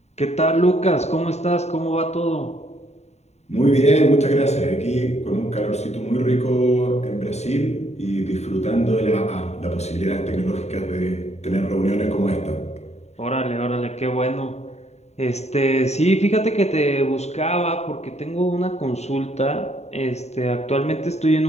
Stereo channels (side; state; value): right; late; 0.32 ms